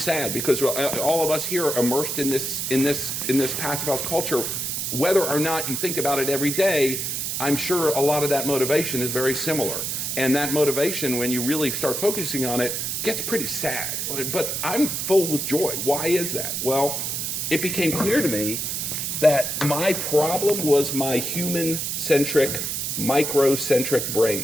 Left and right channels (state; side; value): noise; right; hiss, 2 dB below the sound